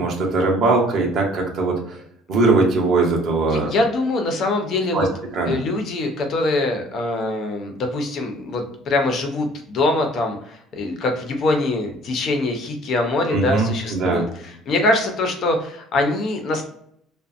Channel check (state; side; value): normal; both; correlation 0.54